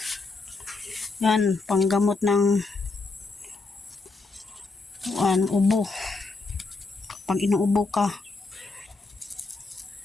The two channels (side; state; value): right; quieter; 3.8 dB